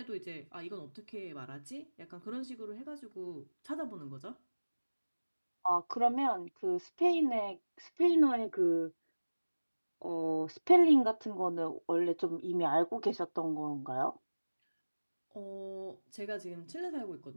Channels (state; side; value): inverted; both; correlation -1.00